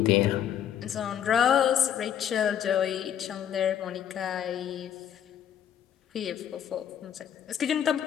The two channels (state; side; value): quieter; right; 9.6 dB